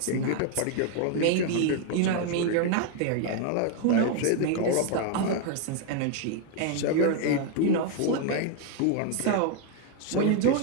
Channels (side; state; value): both; different; correlation 0.01